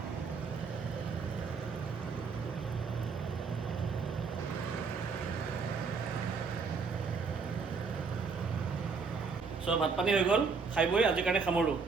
So ভাত পানী হৈ গ'ল, খাই বৈ আজিৰ কাৰণে সামৰোঁ।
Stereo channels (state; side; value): quieter; left; 5.1 dB